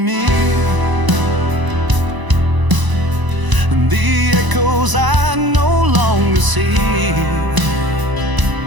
me, and the echoes I no longer see.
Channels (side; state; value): left; late; 1.0 ms